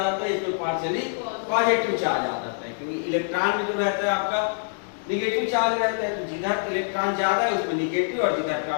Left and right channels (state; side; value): silent; right; digital silence